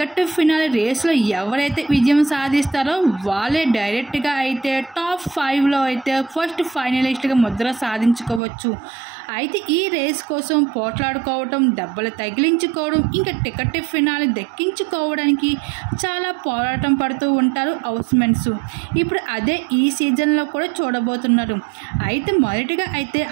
ఫినాలే రేస్లో ఎవరైతే విజయం సాధిస్తారో వాళ్ళే డైరెక్ట్గా అయితే టాప్ 5లో అయితే ఫస్ట్ ఫైనలిస్ట్గా ముద్ర సాధించుకోవచ్చు. అయితే ఈ రేస్ కోసం పోట్లాడుకోవడం, దెబ్బలు తగిలించుకోవడం, ఇంకా టికెట్ ఫినాలే దక్కించుకోవడానికి చాలా పోరాటం పడుతూ ఉంటారు హౌస్మెంట్స్. ఇప్పుడు అదే ఈ సీజన్లో కూడా చూడబోతున్నారు. అయితే మొదటిగా అయితే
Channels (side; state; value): left; drops out; at 8.4 s